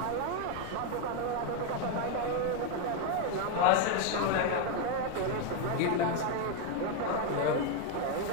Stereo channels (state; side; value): different; both; correlation 0.01